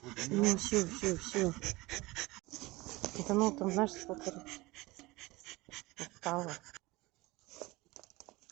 Ну все. Это ну там, знаешь, сколько устала.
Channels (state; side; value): quieter; left; 21.3 dB